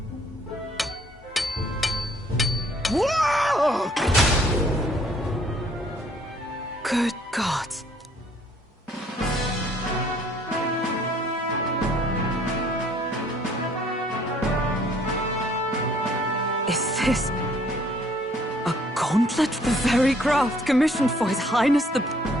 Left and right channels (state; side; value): normal; both; correlation 0.61